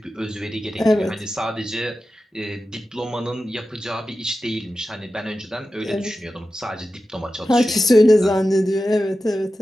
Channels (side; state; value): both; normal; correlation 0.93